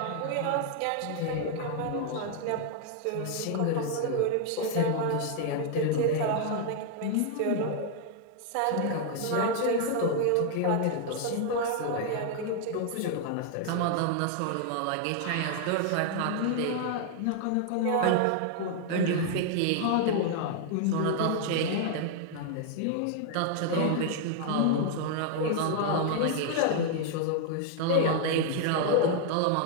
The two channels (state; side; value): different; both; correlation 0.00